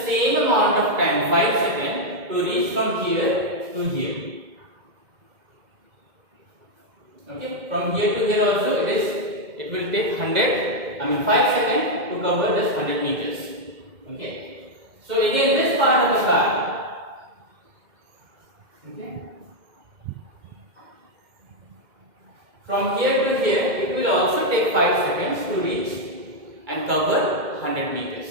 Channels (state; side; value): late; left; 2.1 ms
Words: amount of time, 5 seconds, to reach from here to here. Okay, from here to here also it will take 5 seconds to cover this 100 meters. Okay, so again this part of the car. Okay. From here to here, it will also take 5 seconds to reach and cover 100 meters.